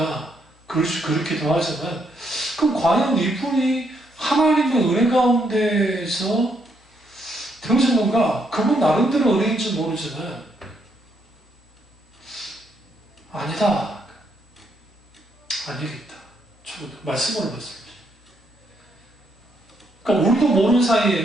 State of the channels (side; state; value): both; normal; correlation 0.75